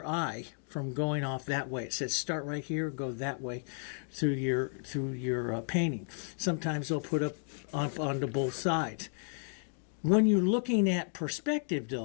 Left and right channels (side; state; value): right; silent; 56 dB below the other